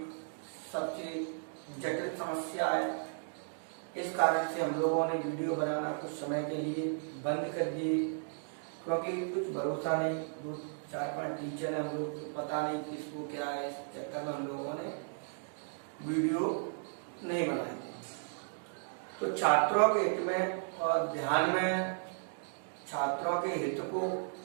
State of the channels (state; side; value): silent; left; digital silence